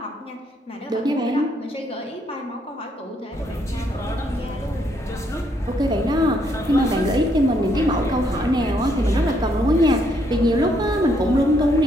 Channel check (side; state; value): both; normal; correlation 0.72